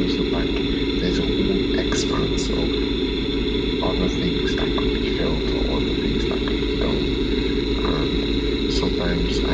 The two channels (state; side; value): identical; both; correlation 1.00